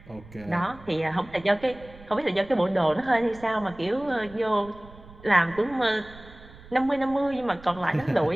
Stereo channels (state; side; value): noise; right; rumble, 20 dB below the sound